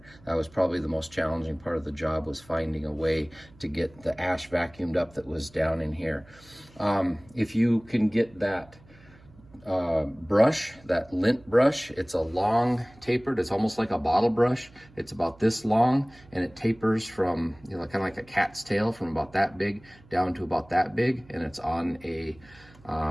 That was probably the most challenging part of the job, was finding a way to get the ash vacuumed up that was down in here. If you can get that brush, that lint brush, it's a long tapered, it's almost like a bottle brush. It's about this long, and it tapers from, you know, kind of like a cat's tail, from about that big down to about that big, and it's on a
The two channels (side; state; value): right; noise; hum, 25 dB below the sound